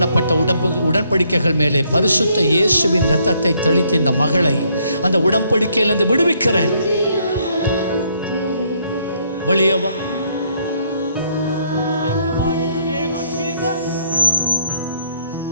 உடன்படிக்கைகள் மேலே பரிசுத்த இயேசுவின் இரத்தத்தை தெளித்து இந்த மகளை அந்த உடன்படிக்கையிலிருந்து விடுவிக்கிறேன். வெளியவா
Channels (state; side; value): inverted; both; correlation -0.70